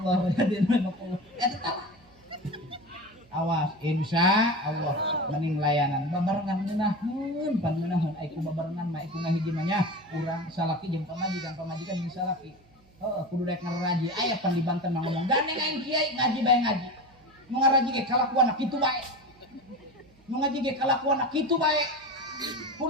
jadi nama Allah. Eta tah. Awas, insya Allah mending layanan babarengan meunahun pan meunahun ai ku babarengan mah iku ngahiji mah nya urang salaki jeung pamajikan jeung salaki. Heuh, kudu daek ngaraji aya pan di Banten mah ngomong gandeng aing kiai ngaji bae ngaji. Nu ngaraji ge kalakuan kitu bae. Nu ngaji ge kalakuan kitu bae.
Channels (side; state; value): right; noise; hum, 29 dB below the sound